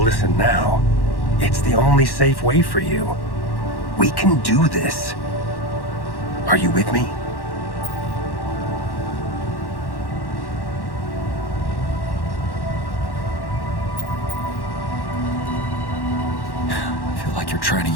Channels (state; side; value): late; right; 1.1 ms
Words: listen now. It's the only safe way for you. We can do this. Are you with me? I feel like you're trying